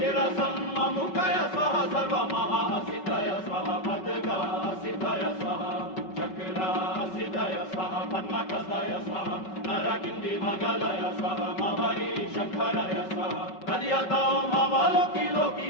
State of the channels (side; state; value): right; late; 5.3 ms